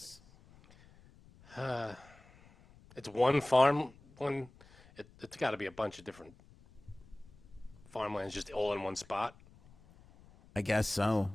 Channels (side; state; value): left; noise; rumble, 25 dB below the sound